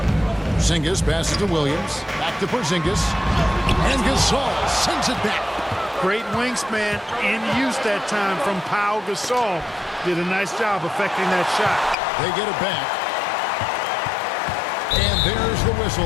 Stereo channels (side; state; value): right; drops out; at 12.0 s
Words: Porzingis passes to Williams. Back to Porzingis. And Gasol sends it back. Great wingspan in use that time from Pau Gasol. Did a nice job affecting that shot. They get it back. And there's the whistle.